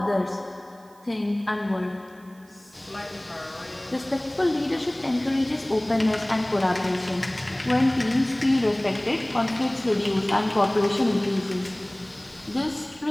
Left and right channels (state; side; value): noise; right; hiss, 30 dB below the sound